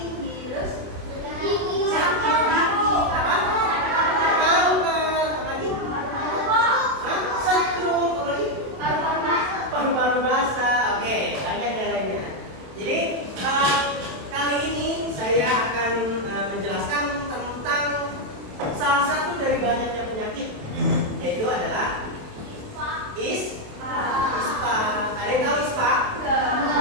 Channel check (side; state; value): left; late; 27 ms